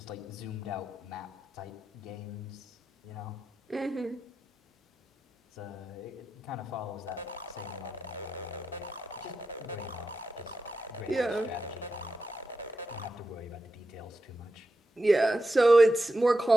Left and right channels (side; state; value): both; normal; correlation 0.89